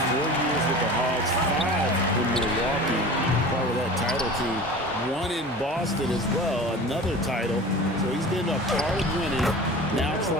4 years with the Hogs, 5 in Milwaukee, part of that title team. 1 in Boston as well, another title. So he's been a part of winning, now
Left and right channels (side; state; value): both; normal; correlation 0.37